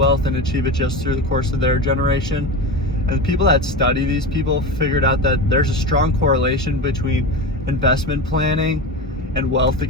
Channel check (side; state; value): both; normal; correlation 0.24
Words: and achieve it just through the course of their generation, and the people that study these people figured out that there's a strong correlation between investment planning and wealth